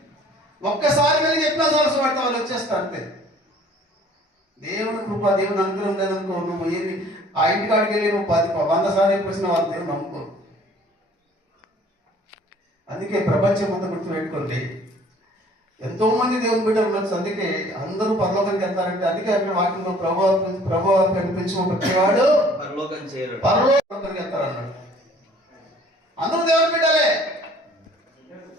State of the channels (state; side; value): normal; both; correlation 0.54